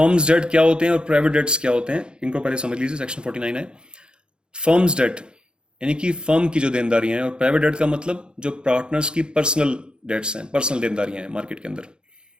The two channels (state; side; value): late; left; 0.050 ms